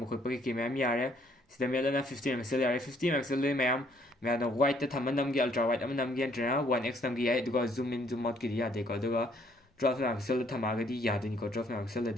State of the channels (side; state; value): both; normal; correlation 0.66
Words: खुद पके की मैम यारे सिदमे लना 15 मेगापिक्सल यारे 50 मेगापिक्सल ले मैम मैं वाइट थम नम की अल्ट्रा वाइट अम नम की एंट्रा 1x नम की है दुको जूम इन जूम आउट की दिया देखो दुको 12 megapixel थमागदी यादनी को 12 megapixel